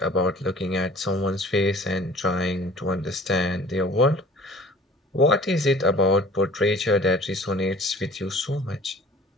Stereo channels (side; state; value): both; normal; correlation 0.49